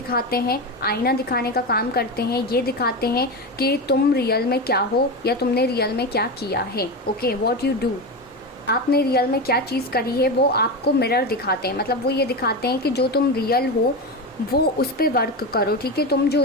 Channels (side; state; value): both; normal; correlation 0.19